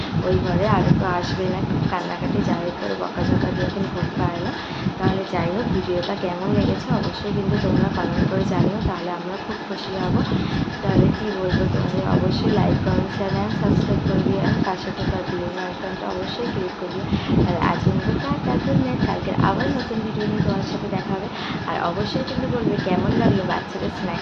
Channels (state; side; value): identical; both; correlation 1.00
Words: ওই ঘরে, আগে তো আসবে না, কান্নাকাটি যাই করে বকাঝকা দিয়ে এখন ঘুম পায় না। তাহলে যাই হোক, ভিডিওটা কেমন লেগেছে অবশ্যই কিন্তু তোমরা কমেন্ট করে জানিও, তাহলে আমরা খুব খুশি হব। তাহলে কী বলবো, তোমাদের অবশ্যই like, comment, share and subscribe করবি, আর পাশে থাকা বেল আইকনটা অবশ্যই ক্লিক করবি। আর আজকে মতো টাটা, গুড নাইট। কালকে আবার নতুন ভিডিও নিয়ে তোমার সাথে দেখা হবে। আর অবশ্যই কিন্তু বলবে কেমন লাগলো বাচ্চাদের